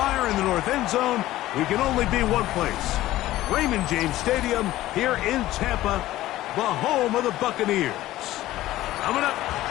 in the north end zone. We can only be one place. Raymond James Stadium here in Tampa, the home of the Buccaneers. Coming up,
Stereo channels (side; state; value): right; quieter; 15.5 dB